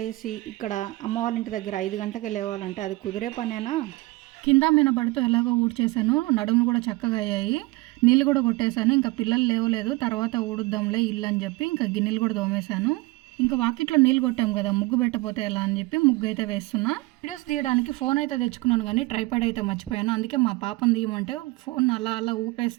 లేచి ఇక్కడ అమ్మ వాళ్ళ ఇంటి దగ్గర 5 గంటలకే లేవాలంటే అది కుదిరే పనేనా? కింద మినబడుతూ ఎలాగో ఊడ్చేసాను. నడుములు కూడా చక్కగా అయ్యాయి. నీళ్ళు కూడా కొట్టేశాను. ఇంకా పిల్లలు లేవలేదు, తర్వాత ఊడుద్దాంలే ఇల్లు అని చెప్పి ఇంకా గిన్నెలు కూడా తోమేశాను. ఇంకా వాకిట్లో నీళ్ళు కొట్టాం కదా, ముగ్గు పెట్టపోతే ఎలా అని చెప్పి ముగ్గు అయితే వేస్తున్నా. వీడియోస్ తీయడానికి ఫోన్ అయితే తెచ్చుకున్నాను, కానీ ట్రైపాడ్ అయితే మర్చిపోయాను. అందుకే మా పాపను తీయమంటే ఫోన్ అలా అలా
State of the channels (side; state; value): left; quieter; 21.2 dB